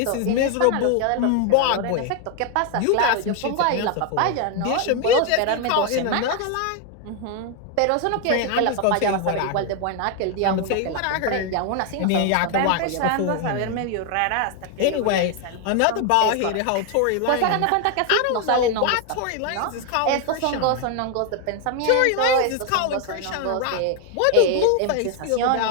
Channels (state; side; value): different; both; correlation 0.01